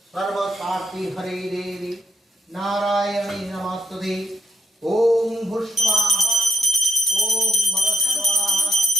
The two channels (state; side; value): normal; both; correlation 0.77